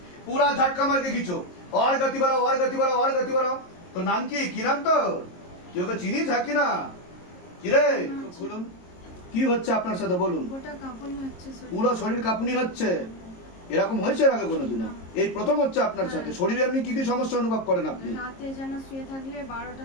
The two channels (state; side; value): late; right; 22 ms